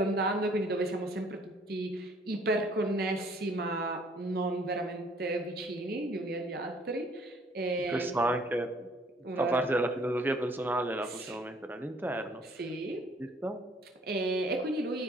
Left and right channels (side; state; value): both; normal; correlation 0.59